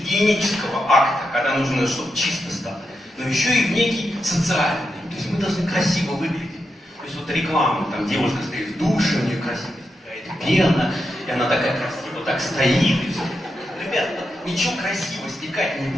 акта, когда нужно, чтобы чисто стало, но еще и в некий социальный. То есть мы должны красиво выглядеть. То есть вот реклама, там девушка стоит в душе, у нее красивая какая-то пена, и она такая красиво так стоит, и все. Ребят, ничего красиво стекать не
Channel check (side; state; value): both; normal; correlation 0.86